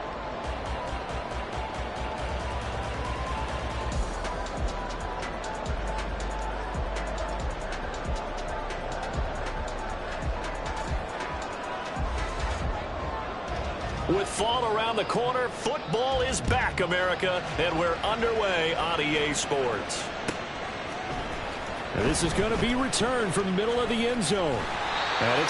With fall around the corner, football is back, America, and we're underway on EA Sports. And this is going to be returned from the middle of the end zone. And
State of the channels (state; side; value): identical; both; correlation 1.00